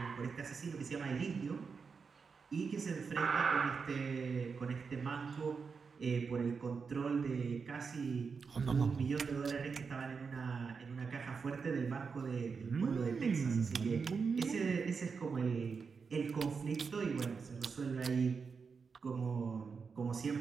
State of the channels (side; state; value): left; quieter; 5.4 dB